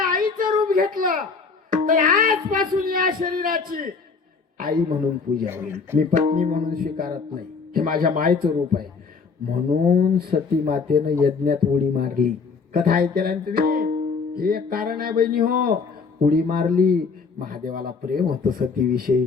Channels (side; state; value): right; quieter; 5.0 dB